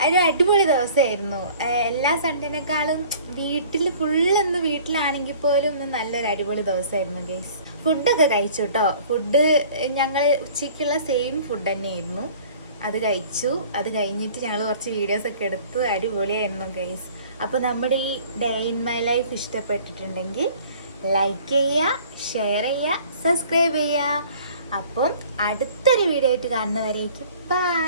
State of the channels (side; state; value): both; inverted; correlation -0.50